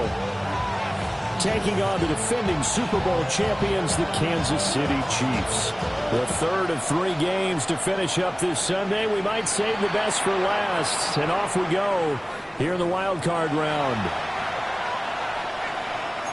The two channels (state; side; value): identical; both; correlation 1.00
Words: taking on the defending Super Bowl champions, the Kansas City Chiefs. The third of 3 games to finish up this Sunday. We might save the best for last, and off we go here in the Wild Card round.